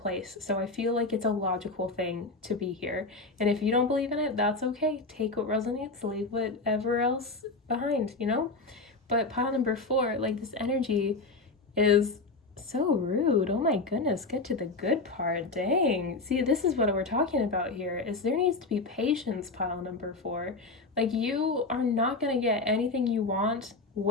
So I feel like it's a logical thing to be here. And if you don't believe in it, that's okay. Take what resonates, leave whatever else behind, you know? But pile number 4, like this energy is so rude. Oh my goodness, get to the good part. Dang. See, this is what we're talking about here, is there needs to be patience, pile number 4. Like you are not going to get anything you want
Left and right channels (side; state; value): right; quieter; 3.5 dB